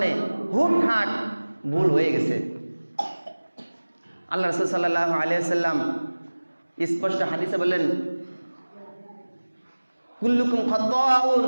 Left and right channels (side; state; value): both; inverted; correlation -1.00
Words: হুটহাট ভুল হয়ে গেছে। আল্লাহ রাসূল সাল্লাল্লাহু আলাইহি ওয়াসাল্লাম স্পষ্ট হাদিসে বলেন, কুল্লুকুম খাত্তাউন,